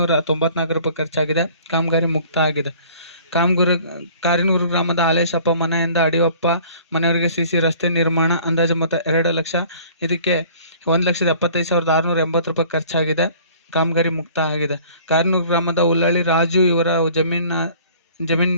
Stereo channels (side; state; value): both; inverted; correlation -0.51